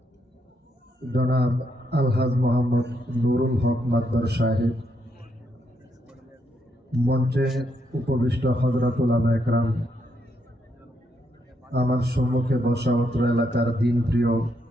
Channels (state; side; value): normal; both; correlation 0.77